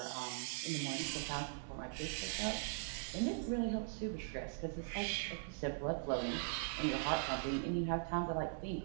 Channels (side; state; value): left; silent; digital silence